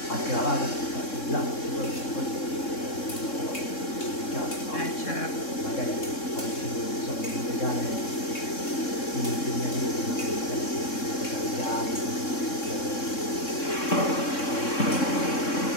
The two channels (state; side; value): late; right; 3.6 ms